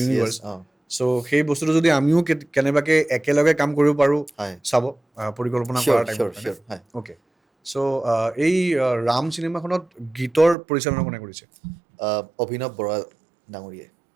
চ' সেই বস্তুটো যদি আমিও কেনেবাকৈ একেলগে কাম কৰিব পাৰোঁ চাব পৰিকল্পনা কৰাৰ টাইমত অ'কে চ' এই ৰাম চিনেমাখনত গীতৰ পৰিচালনা কোনে কৰিছে অভিনৱ বৰা ডাঙৰীয়াই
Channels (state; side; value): drops out; left; at 10.6 s